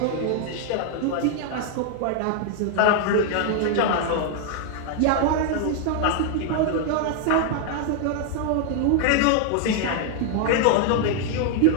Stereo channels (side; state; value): both; different; correlation 0.00